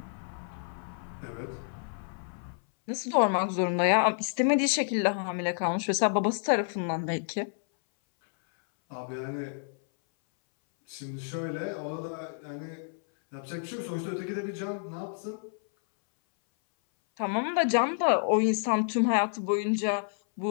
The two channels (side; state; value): right; silent; 58 dB below the other